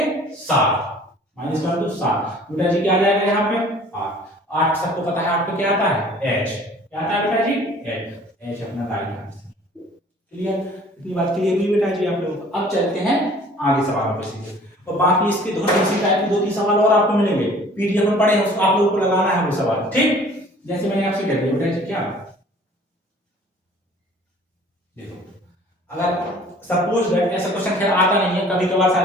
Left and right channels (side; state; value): both; normal; correlation 0.51